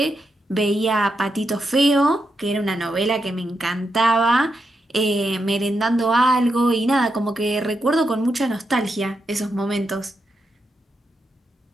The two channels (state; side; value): normal; both; correlation 0.84